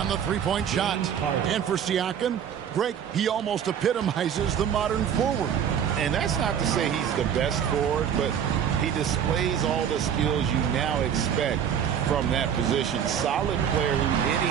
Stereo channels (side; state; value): left; quieter; 8.6 dB